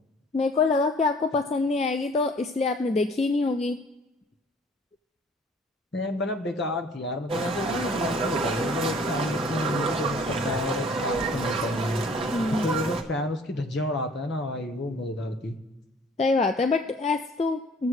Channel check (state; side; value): normal; both; correlation 0.53